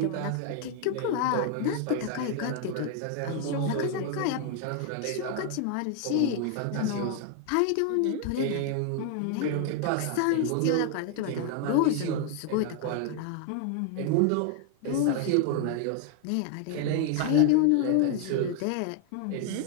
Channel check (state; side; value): different; both; correlation 0.00